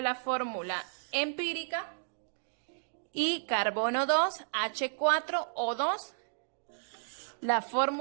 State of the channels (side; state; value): left; silent; digital silence